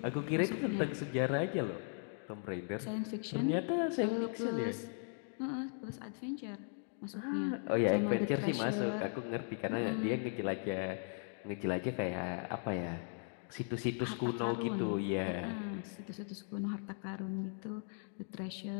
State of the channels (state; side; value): silent; right; 52 dB below the other